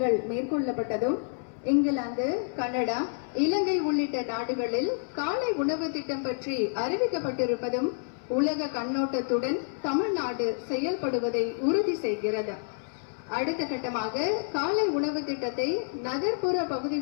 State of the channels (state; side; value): silent; right; 59 dB below the other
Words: மேற்கொள்ளப்பட்டதும், இங்கிலாந்து, கனடா, இலங்கை உள்ளிட்ட நாடுகளில் காலை உணவு திட்டம் பற்றி அறிவிக்கப்பட்டிருப்பதும் உலக கண்ணோட்டத்துடன் தமிழ்நாடு செயல்படுவதை உறுதி செய்கிறது. அடுத்த கட்டமாக காலை உணவு திட்டத்தை நகர்ப்புற